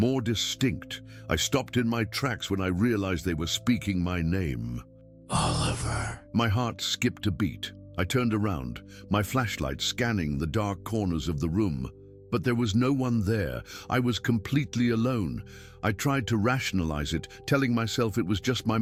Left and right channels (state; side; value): identical; both; correlation 1.00